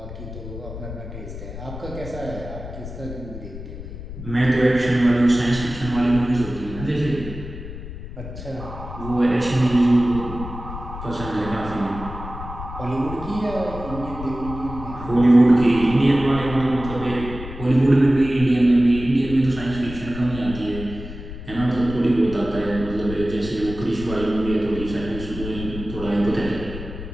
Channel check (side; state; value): left; noise; rumble, 10 dB below the sound